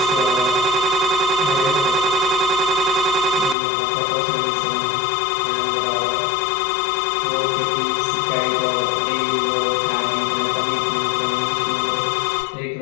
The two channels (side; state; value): right; drops out; at 3.6 s